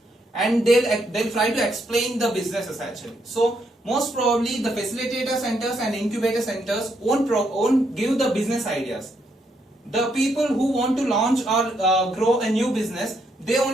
and they'll try to explain the businesses actually. So most probably the facilitator centers and incubator centers won't give the business ideas. The people who want to launch or grow a new business, they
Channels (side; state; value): both; normal; correlation 0.76